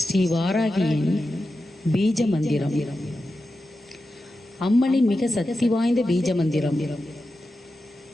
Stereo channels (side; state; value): both; normal; correlation 0.91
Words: வாராகியின் பீஜ மந்திரம். அம்மனின் மிக சக்தி வாய்ந்த பீஜ மந்திரம்.